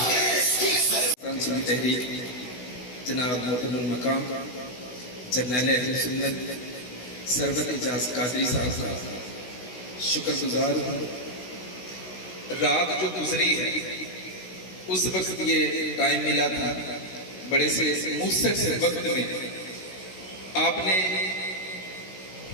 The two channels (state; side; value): late; right; 16 ms